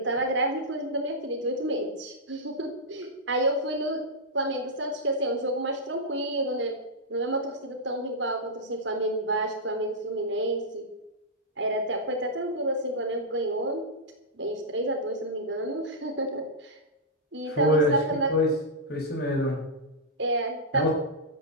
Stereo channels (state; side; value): normal; both; correlation -0.10